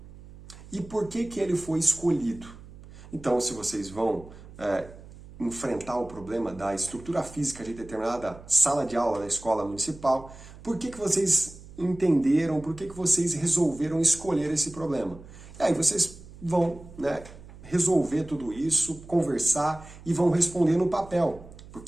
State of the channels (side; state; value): right; noise; hum, 18 dB below the sound